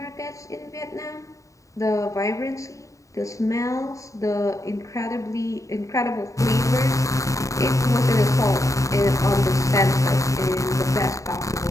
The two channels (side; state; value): right; late; 0.16 ms